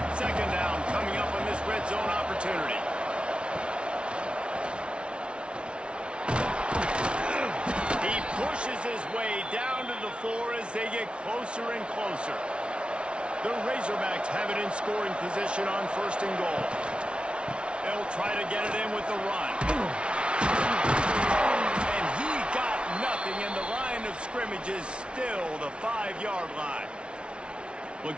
Second down coming up on this red zone opportunity. He pushes his way down to the 4 as they get closer and closer. The Razorbacks have it in scoring position on 1st and goal. They'll try to get it in with the run. And he got nothing, and the line of scrimmage is still the 5-yard line.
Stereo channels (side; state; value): left; late; 0.058 ms